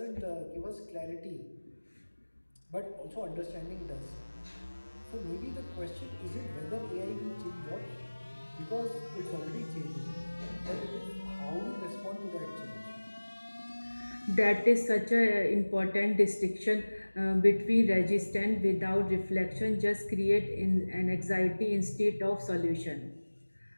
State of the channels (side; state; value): both; inverted; correlation -1.00